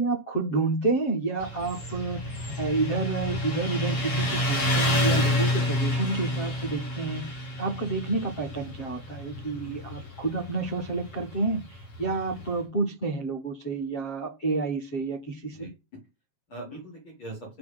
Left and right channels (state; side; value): late; right; 7.4 ms